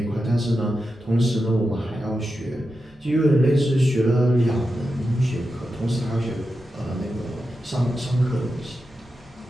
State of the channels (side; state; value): both; normal; correlation 0.90